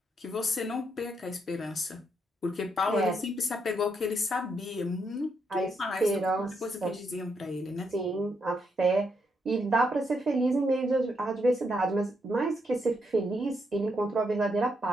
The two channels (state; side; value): normal; both; correlation 0.78